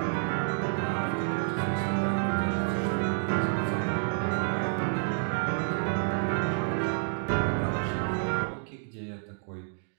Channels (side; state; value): left; silent; 58 dB below the other